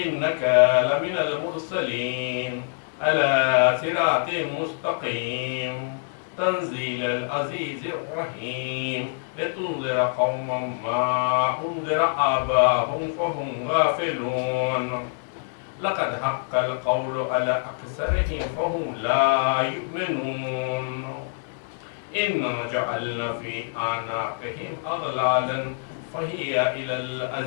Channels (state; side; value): silent; right; 61 dB below the other